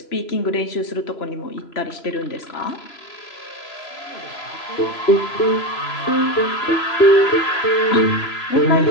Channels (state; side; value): late; right; 3.0 ms